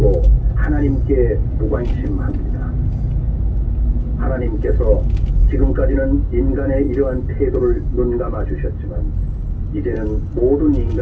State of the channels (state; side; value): identical; both; correlation 1.00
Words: 하나님께 무관심합니다. 하나님께서 지금까지는 인간의 이러한 태도를 눈감아 주셨지만 이제는 모든